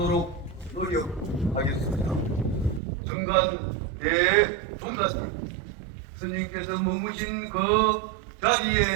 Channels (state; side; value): drops out; left; at 2.8 s